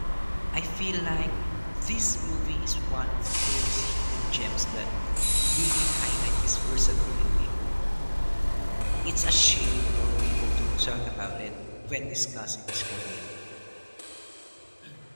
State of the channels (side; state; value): both; inverted; correlation -1.00